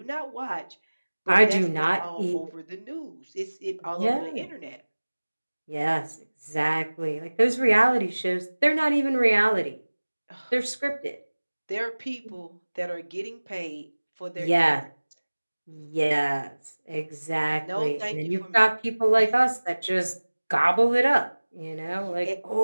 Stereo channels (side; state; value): both; inverted; correlation -1.00